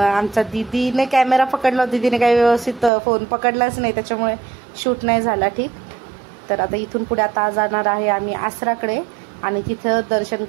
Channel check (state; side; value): drops out; left; at 2.9 s